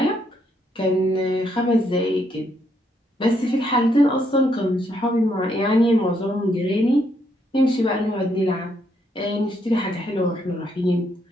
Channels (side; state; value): both; normal; correlation 0.74